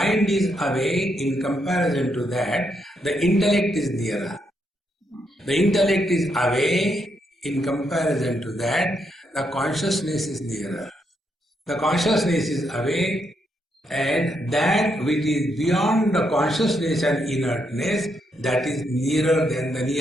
is away. In comparison to that, the intellect is nearer. The intellect is away. In comparison to that, the consciousness is nearer. The consciousness is away, and that which is beyond the consciousness and inertness, that is nearer than the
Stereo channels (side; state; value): both; normal; correlation 0.79